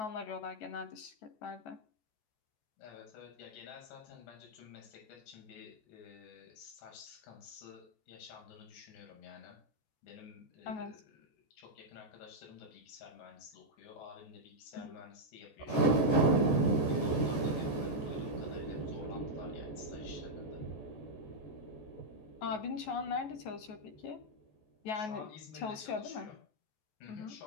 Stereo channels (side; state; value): right; late; 14 ms